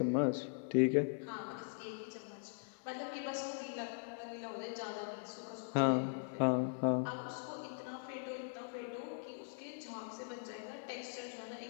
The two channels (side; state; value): right; silent; 51 dB below the other